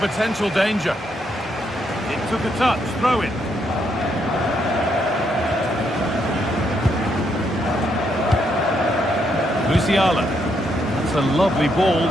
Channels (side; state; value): both; normal; correlation 0.76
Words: danger. It took a touch, throw in. Musiala. That's a lovely ball.